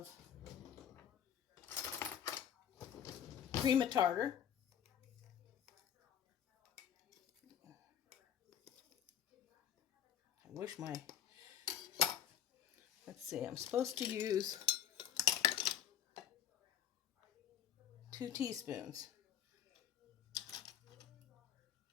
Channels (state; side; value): quieter; right; 9.3 dB